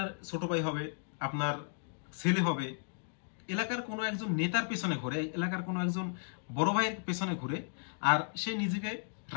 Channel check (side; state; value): right; silent; digital silence